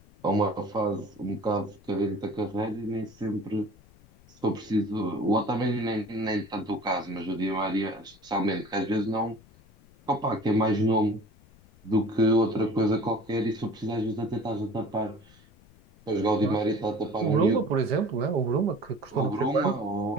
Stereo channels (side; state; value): left; noise; rumble, 26 dB below the sound